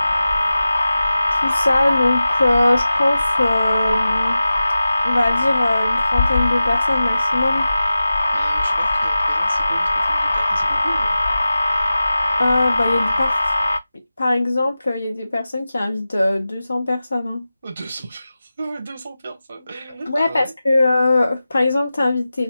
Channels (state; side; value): inverted; both; correlation -0.94